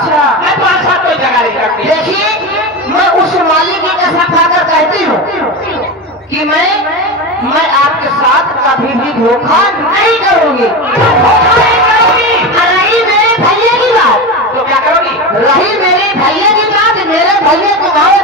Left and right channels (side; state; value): both; normal; correlation 0.21